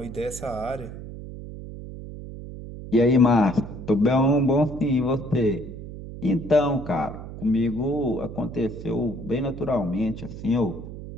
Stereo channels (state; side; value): noise; right; hum, 11 dB below the sound